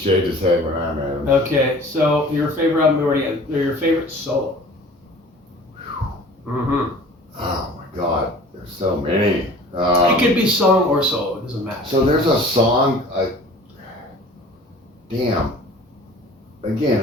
his head when I met him. Okay, so your favorite album already, or your favorite solo? Mm-hmm. Oh my God, there's so many. It could be song or solo, it doesn't matter. So there's a song, damn. Again,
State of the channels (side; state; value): both; normal; correlation 0.46